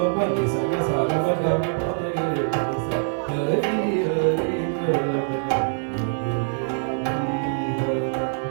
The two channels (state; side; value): silent; left; 63 dB below the other